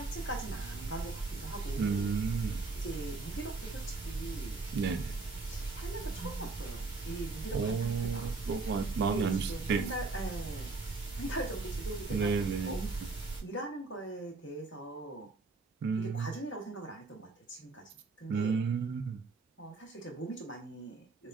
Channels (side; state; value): left; quieter; 3.9 dB